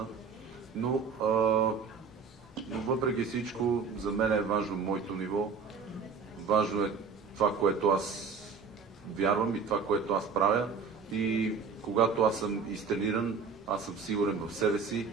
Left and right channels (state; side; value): quieter; left; 5.4 dB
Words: Но въпреки всичко, за мен е важно моето ниво. Важно е това, което аз вярвам и това, което аз правя. И когато аз съм изтрениран, аз съм сигурен в себе си